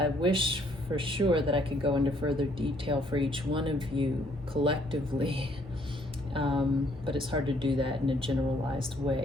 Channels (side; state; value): both; normal; correlation 0.66